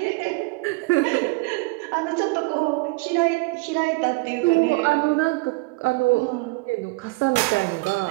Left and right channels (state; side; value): quieter; left; 25.1 dB